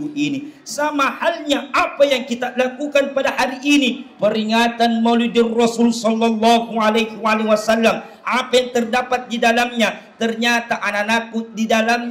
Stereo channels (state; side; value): identical; both; correlation 1.00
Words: ini. Sama halnya apa yang kita lakukan pada hari ini, peringatan Maulidur Rasul sallallahu alaihi wasallam. Apa yang terdapat di dalamnya? Ternyata anak-anakku di